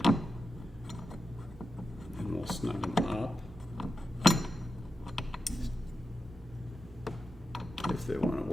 And we'll snug them up. If they want to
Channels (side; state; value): both; normal; correlation 0.90